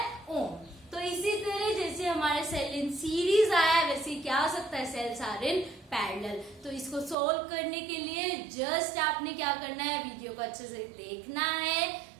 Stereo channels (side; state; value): left; drops out; at 7.2 s